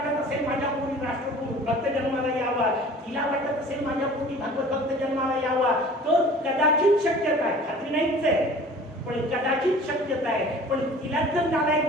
असेल माझ्या पोटी राष्ट्रकुल भक्त जन्माला यावा, तिला वाटत असेल माझ्या पोटी भागवत भक्त जन्माला यावा, तर कदाचित शक्यता आहे. खात्री नाहीच आहे, पण कदाचित शक्यता आहे. पण तिला जर नालायक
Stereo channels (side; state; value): both; normal; correlation 0.45